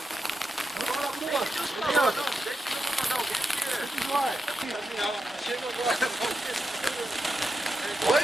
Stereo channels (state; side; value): normal; both; correlation 0.88